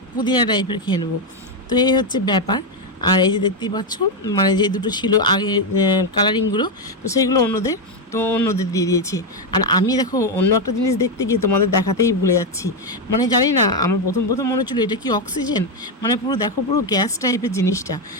পুদিনা টাইপের খেয়ে নেবো। তো এই হচ্ছে ব্যাপার। আর এই যে দেখতেই পাচ্ছ মানে যে দুটো ছিল আগে কালারিংগুলো, তো সেইগুলো অন্যদের দিয়ে দিয়েছি। আর আমি দেখো অন্য একটা জিনিস দেখতে গিয়ে তোমাদের দেখাতেই ভুলে যাচ্ছি, মানে জানি না আমার প্রথম মনে হচ্ছিলো এটা কি অক্সিজেন, মানে পুরো দেখো পুরো গ্যাস টাইপের জিনিসটা।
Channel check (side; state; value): both; normal; correlation 0.06